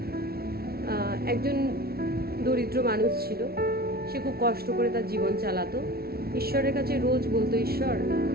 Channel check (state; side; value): late; left; 0.44 ms